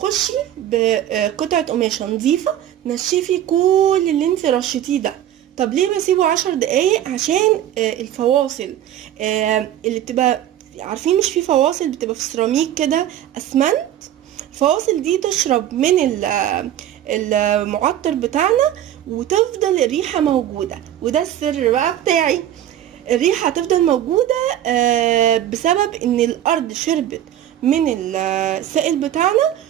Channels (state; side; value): quieter; left; 11.6 dB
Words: بقطعه قماشه نظيفه نشفي كل اللي انت رشيتيه ده. طب ليه بسيبه 10 دقايق؟ عشان الفواصل اللي بتبقى، عارفين مش في فواصل بتبقى في سيراميك كده اسمنت، الفواصل دي تشرب من المعطر بتاعنا وتفضل الريحة موجودة. وده السر بقى بتاعي، الريحة هتفضل موجودة بسبب ان الارض شربت من السائل بتاعنا،